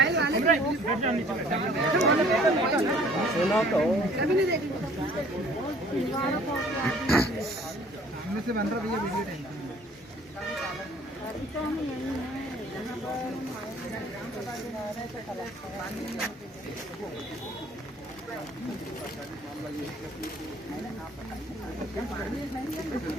सुना तो से बन रहा भैया वीडियो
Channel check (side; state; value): both; normal; correlation 0.55